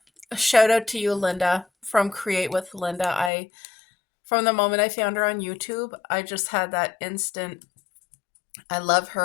a shout out to you, Linda, from Create with Linda. From the moment I found her on YouTube, I just had that instant, I love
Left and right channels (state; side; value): drops out; right; at 3.3 s